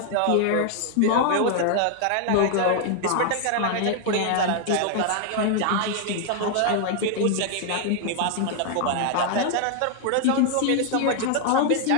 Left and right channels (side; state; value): both; different; correlation 0.00